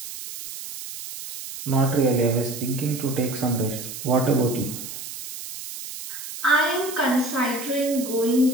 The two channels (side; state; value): right; noise; hiss, 10 dB below the sound